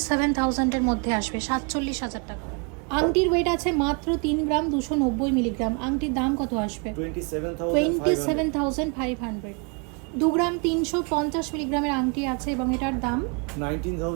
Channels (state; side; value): quieter; left; 33.4 dB